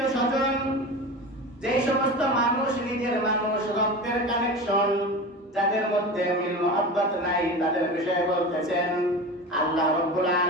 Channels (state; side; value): normal; both; correlation 0.29